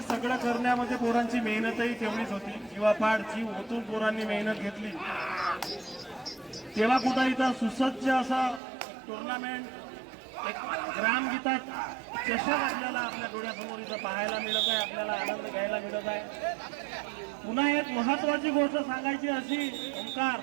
सगळं करण्यामध्ये पोरांची मेहनतही तेवढीच होती. जीवापाड जीव ओतून पोरांनी मेहनत घेतली. तेव्हा कुठं इथं सुसज्ज असं टुर्नामेंट एक ग्रामगीता चषक आपल्याला आपल्या डोळ्यासमोर इथं पाहायला मिळत आहे, आपल्याला आनंद घ्यायला मिळत आहे. पुन्हा एक महत्वाची गोष्ट सांगायची अशी ओंकार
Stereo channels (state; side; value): drops out; left; at 8.6 s